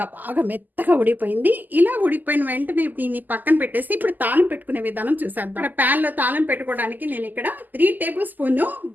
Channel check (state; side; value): late; left; 0.085 ms